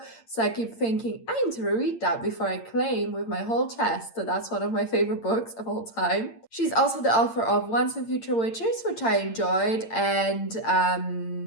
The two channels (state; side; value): late; right; 8.8 ms